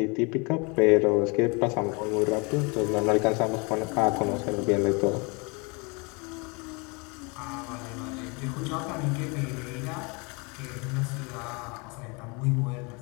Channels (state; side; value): quieter; right; 29.8 dB